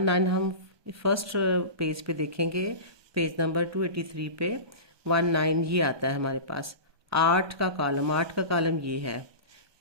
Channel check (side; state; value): left; late; 1.2 ms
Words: हम फर्स्ट पेज पे देखेंगे, पेज नंबर 283 पे 19 ये आता है हमारे पास। 8 का कॉलम ये है।